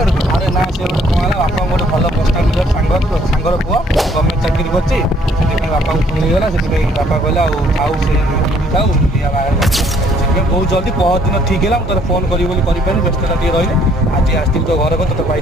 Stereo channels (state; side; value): normal; both; correlation 0.63